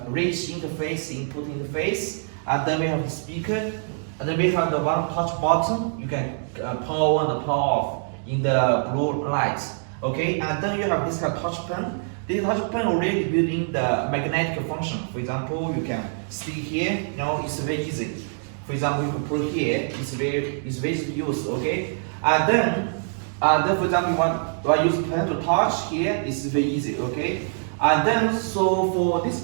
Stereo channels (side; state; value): left; silent; digital silence